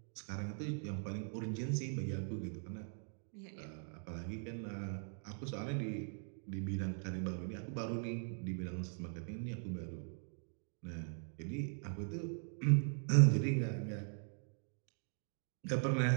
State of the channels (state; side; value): silent; left; 51 dB below the other